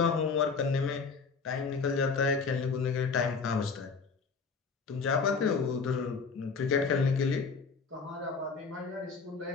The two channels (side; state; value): right; quieter; 4.9 dB